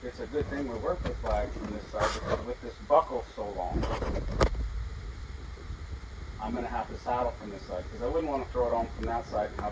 it's a good thing we work with flags from this side because with this buckle so long, I'm going to have to saddle from this side because I wouldn't want to throw it on from that side and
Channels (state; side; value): identical; both; correlation 1.00